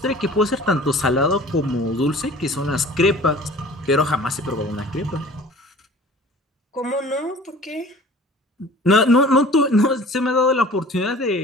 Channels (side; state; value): both; normal; correlation 0.45